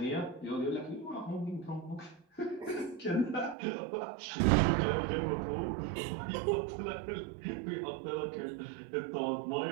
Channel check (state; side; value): drops out; left; at 3.6 s